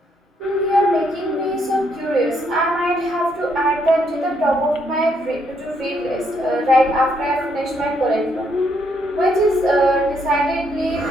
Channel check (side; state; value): both; normal; correlation 0.73